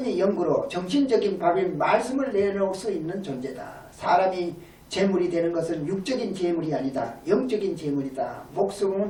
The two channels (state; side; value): identical; both; correlation 1.00